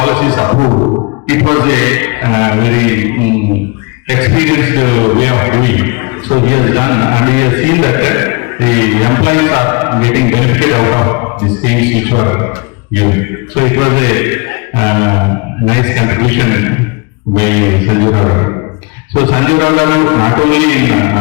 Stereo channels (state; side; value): quieter; right; 29.4 dB